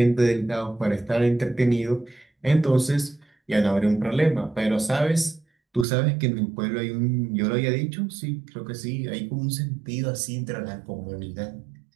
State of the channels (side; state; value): left; drops out; at 5.9 s